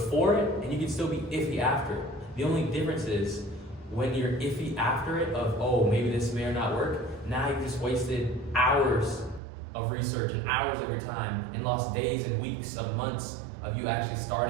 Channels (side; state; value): left; drops out; at 9.4 s